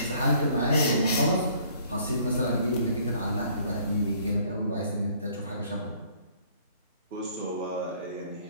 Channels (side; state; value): both; inverted; correlation -0.59